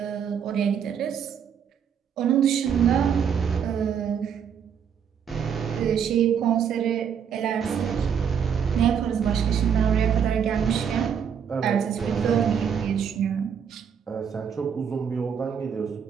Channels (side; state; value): left; quieter; 7.7 dB